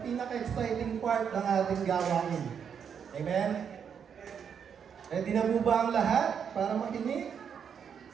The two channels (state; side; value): quieter; left; 7.4 dB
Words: pinaka-exciting part ng ating gawain. Amen? Ready na po ba ang lahat para makinig?